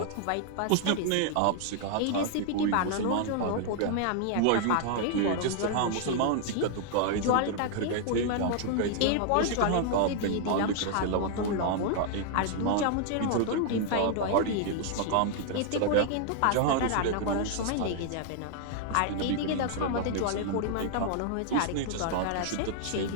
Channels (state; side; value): different; both; correlation 0.00